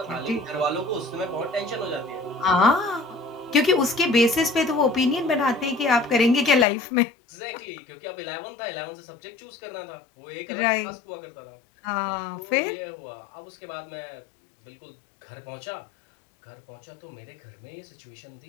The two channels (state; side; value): drops out; right; at 6.7 s